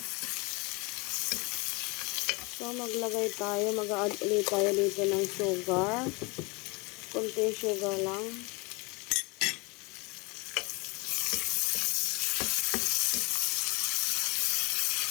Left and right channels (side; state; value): right; quieter; 28.0 dB